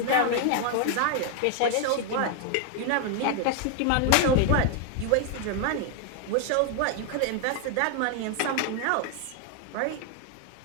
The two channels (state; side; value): different; both; correlation 0.00